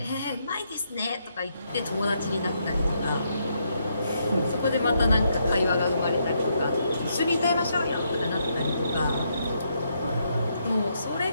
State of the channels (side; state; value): both; inverted; correlation -0.77